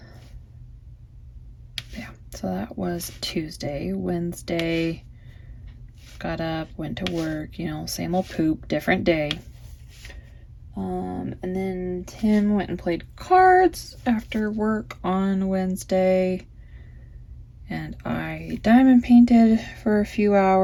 Yeah, so that was Tuesday. Wednesday, got up, went to work, you know, same old poop, different day. And then Tim went and played cards after work on Wednesday. And I diamond painted for a few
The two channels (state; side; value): identical; both; correlation 1.00